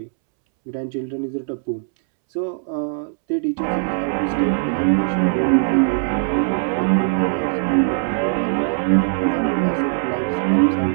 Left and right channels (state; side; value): silent; left; 66 dB below the other